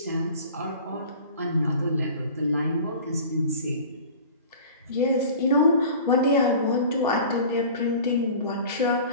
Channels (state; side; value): inverted; both; correlation -0.41